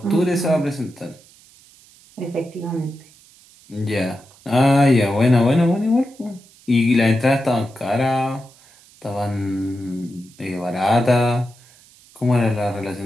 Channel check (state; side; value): noise; right; hiss, 27 dB below the sound